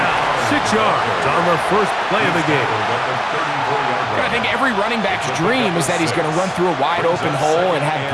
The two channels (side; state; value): both; identical; correlation 1.00